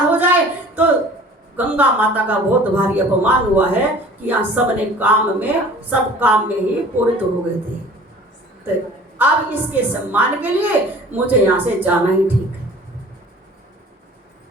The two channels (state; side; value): normal; both; correlation 0.47